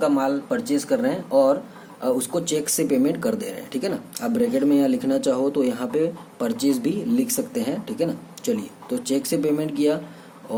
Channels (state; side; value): identical; both; correlation 1.00